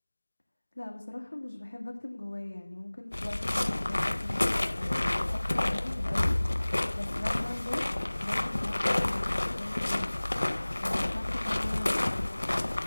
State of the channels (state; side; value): inverted; both; correlation -1.00